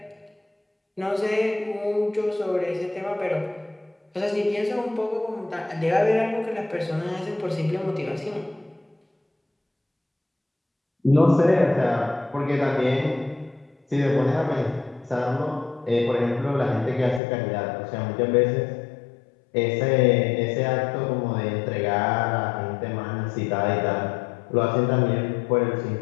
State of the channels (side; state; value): right; drops out; at 17.2 s